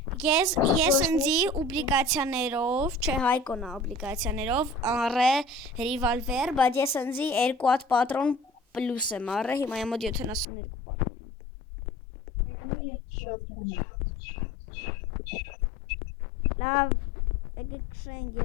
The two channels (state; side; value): drops out; right; at 10.5 s